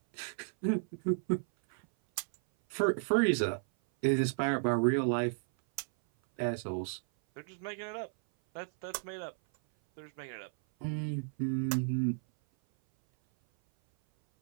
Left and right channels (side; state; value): left; silent; 56 dB below the other